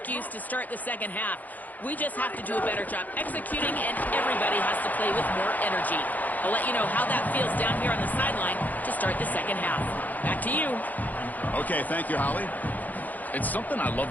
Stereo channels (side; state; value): right; late; 0.081 ms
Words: to start the second half. We just have to do a better job executing, and everybody has to play with more energy. I'll let you know how that feels down here on the sideline to start the second half. Back to you. Okay, thank you, Holly. It's something I love